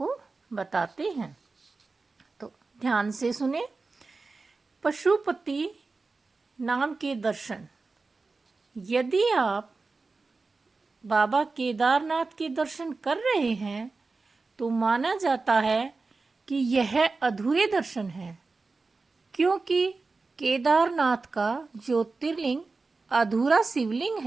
बताते हैं, तो ध्यान से सुने। पशुपति नाम के दर्शन। यदि आप बाबा केदारनाथ के दर्शन कर रहे हैं तो माना जाता है कि यह अधूरे दर्शन हैं, क्योंकि केदारनाथ का ज्योतिर्लिंग अधूरा शिवलिंग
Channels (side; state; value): left; quieter; 3.9 dB